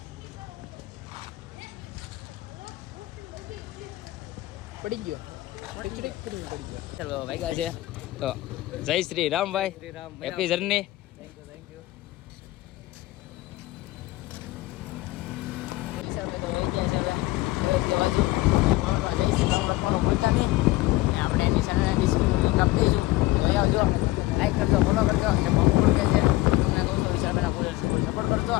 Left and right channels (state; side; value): quieter; right; 18.6 dB